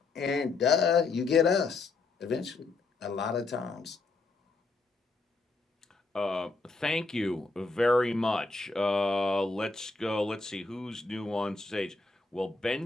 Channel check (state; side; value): quieter; right; 3.7 dB